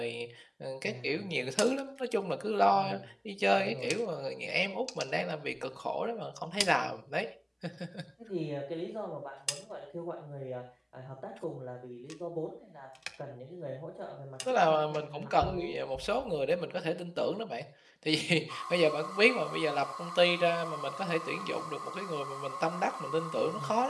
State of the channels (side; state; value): both; identical; correlation 1.00